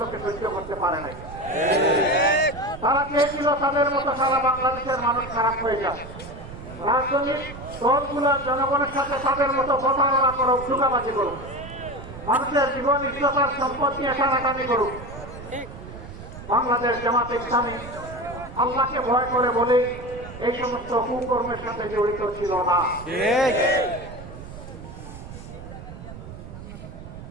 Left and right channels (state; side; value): noise; right; rumble, 13 dB below the sound